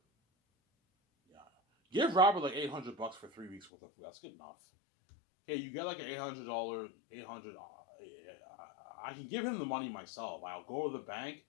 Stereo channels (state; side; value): drops out; right; at 3.7 s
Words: Yeah, give Robert like $800 for 3 weeks worth of food. That's good enough. Okay, you get like an $800. I can give him the money myself. I'll go to the bank.